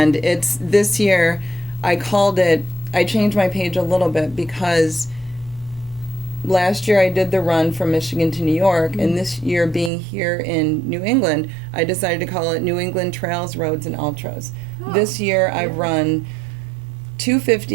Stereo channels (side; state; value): left; drops out; at 9.9 s